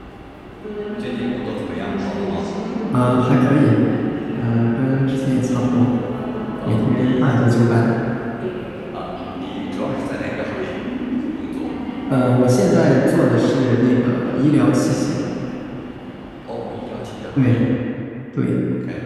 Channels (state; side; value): identical; both; correlation 1.00